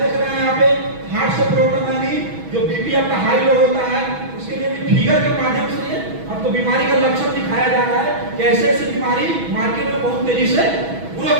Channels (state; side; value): late; left; 6.2 ms